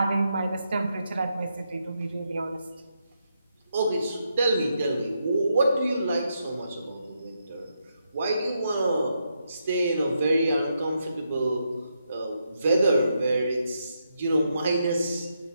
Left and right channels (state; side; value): inverted; both; correlation -0.81